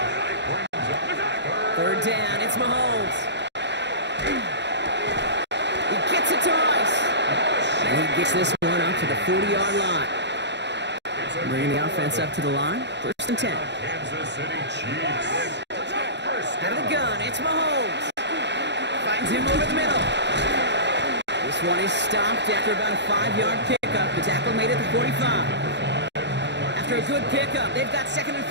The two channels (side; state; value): left; late; 0.51 ms